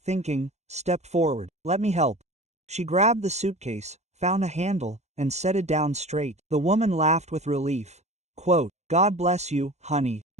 stepped forward. "Let me help." She grabbed the suitcase, found a handle, and set it down straight. The woman laughed with relief. Quote, "God bless you, honey.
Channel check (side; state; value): left; late; 0.32 ms